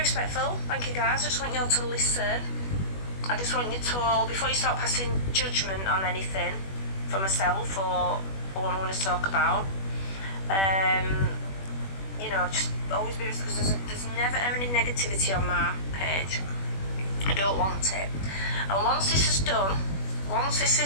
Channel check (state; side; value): late; right; 21 ms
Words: Thank you guys. I just want you all to listen. I just want you to all, before you start passing judgment on anything for myself or what I'm going to talk about, you know, just always be respectful, because there's never any negativity on my page. I don't want it. And once this is done,